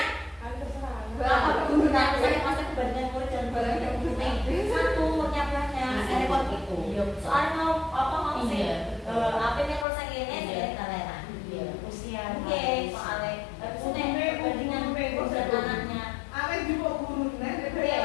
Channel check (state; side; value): drops out; right; at 9.9 s